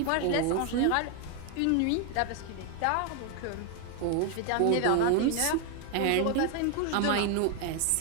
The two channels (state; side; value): different; both; correlation 0.01